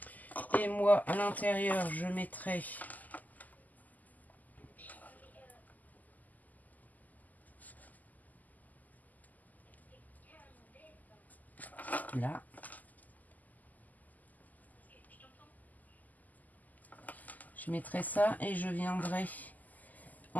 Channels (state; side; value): late; right; 0.081 ms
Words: Et moi, à l'intérieur, je mettrai là. Je mettrai ça et je viendrai